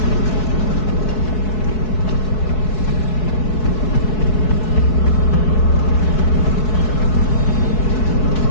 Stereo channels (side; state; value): right; late; 4.7 ms